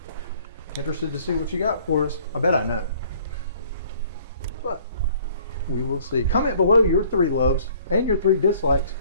Interested to see what you got for us. I bet I know. But we will see. Comment below your 3 loves and your 3 dislikes.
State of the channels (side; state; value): both; inverted; correlation -0.56